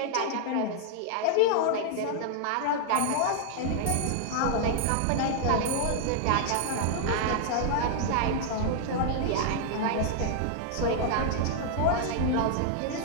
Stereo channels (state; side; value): different; both; correlation 0.00